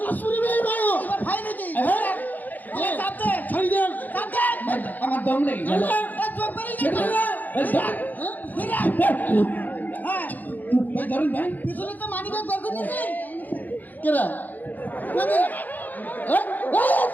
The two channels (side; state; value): right; late; 0.083 ms